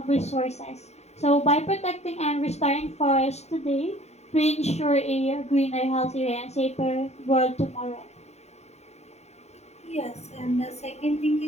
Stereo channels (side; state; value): right; late; 0.32 ms